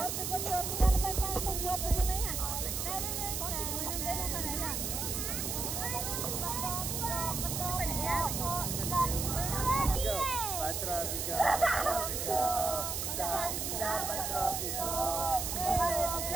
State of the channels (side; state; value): right; noise; hiss, 2 dB below the sound